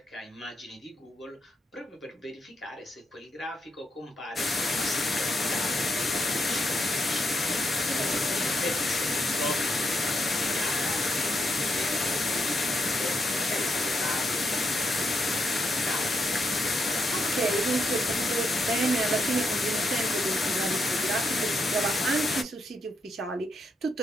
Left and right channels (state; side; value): normal; both; correlation 0.79